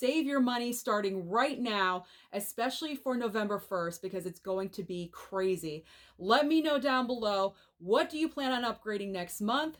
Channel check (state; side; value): identical; both; correlation 1.00